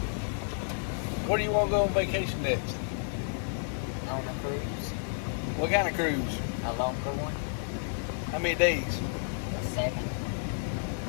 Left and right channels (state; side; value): silent; right; digital silence